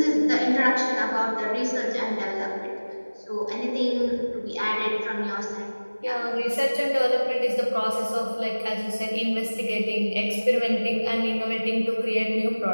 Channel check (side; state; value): both; inverted; correlation -1.00